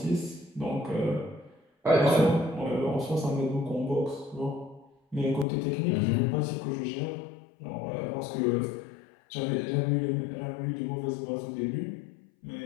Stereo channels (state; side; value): drops out; right; at 5.5 s